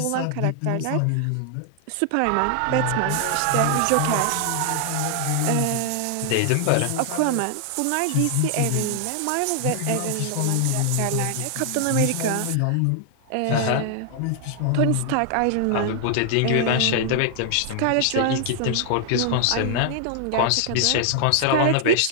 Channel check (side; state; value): both; different; correlation 0.00